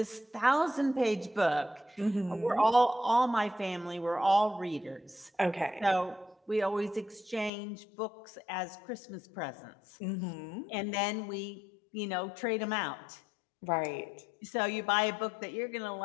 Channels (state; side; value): drops out; right; at 7.5 s